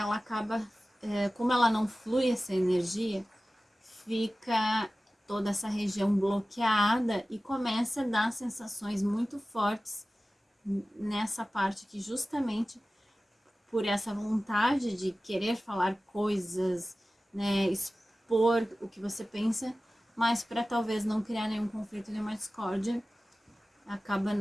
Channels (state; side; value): normal; both; correlation 0.96